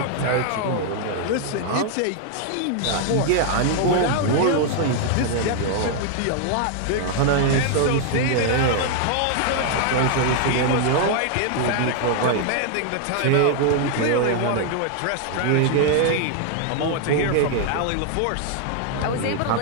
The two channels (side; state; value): both; different; correlation 0.00